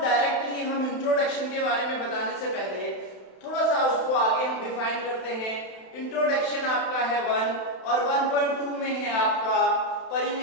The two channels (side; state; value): right; late; 31 ms